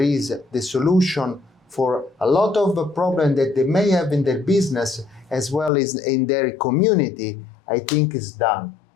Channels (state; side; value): drops out; right; at 5.7 s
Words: is the solution for a lot of the problems that they may have in their business as well as in their community, I think is done.